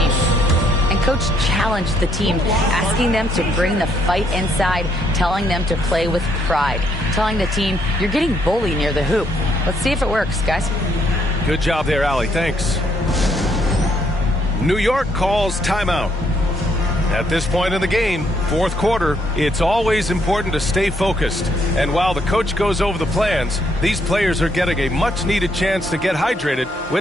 And Coach challenged the team, asking them to bring the fight inside, telling them to play with pride, telling the team, you're getting bullied near the hoop. Let's see if it works, guys. Good job there, Allie. Thanks. New York calls timeout. At this point in the game, 4th quarter, it's always important to stay focused. And while the coach goes over the plans, these players are getting a much-needed chance to get hydrated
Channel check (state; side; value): normal; both; correlation 0.72